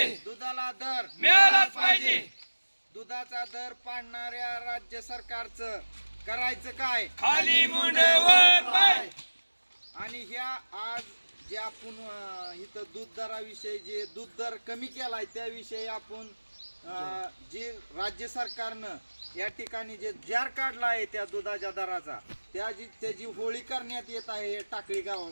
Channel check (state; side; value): inverted; both; correlation -1.00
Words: दुधाला दर मिळालाच पाहिजे. दुधाचा दर पाडणाऱ्या राज्य सरकारचं करायचं काय? खाली मुंडे वर पाय. आणि ह्या आज जे आपण इथं दूध दराविषयी जे दूध दर कमी केलाय त्याविषयी आपण जे राज्य सरकारनं या ठिकाणी जे जार काढला आहे त्या दुधाच्या दराचा त्याची होळी करण्यात येत आहे टाकळी